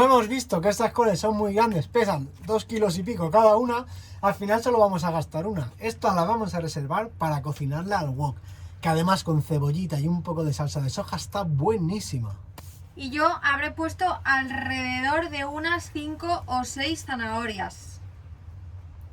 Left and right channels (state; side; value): identical; both; correlation 1.00